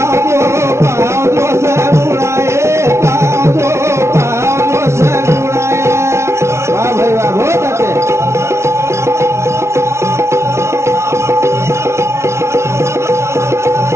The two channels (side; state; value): left; late; 0.13 ms